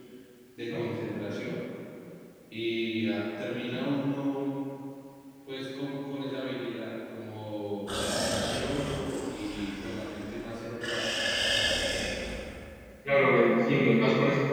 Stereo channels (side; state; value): both; identical; correlation 1.00